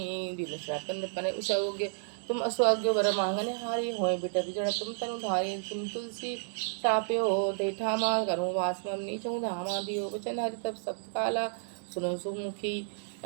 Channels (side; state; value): left; silent; digital silence